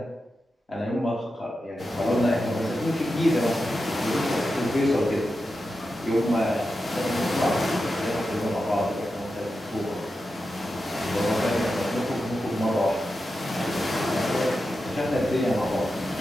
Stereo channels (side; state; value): both; normal; correlation 0.90